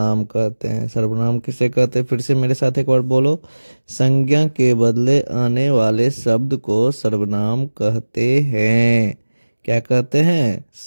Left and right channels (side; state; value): both; inverted; correlation -1.00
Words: कहते हैं। सर्वनाम किसे कहते हैं? फिर से मेरे साथ एक बार बोलो। संज्ञा के बदले आने वाले शब्द को सर्वनाम कहते हैं। क्या कहते हैं?